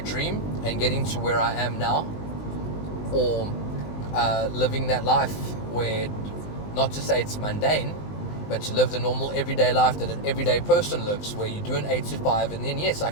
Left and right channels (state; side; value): late; right; 20 ms